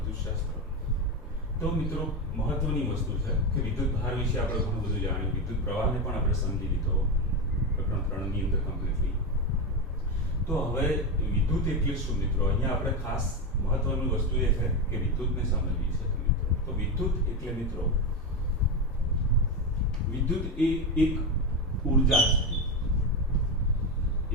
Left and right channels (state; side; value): normal; both; correlation 0.14